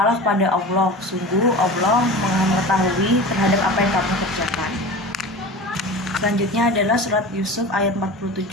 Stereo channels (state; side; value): normal; both; correlation 0.33